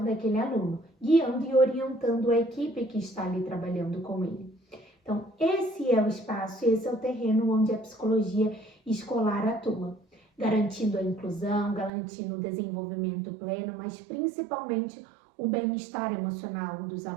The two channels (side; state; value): left; drops out; at 11.9 s